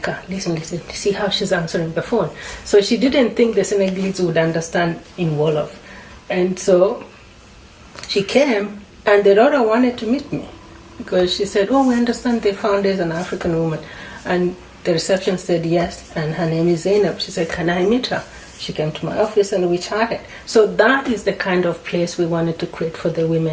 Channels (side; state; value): both; identical; correlation 1.00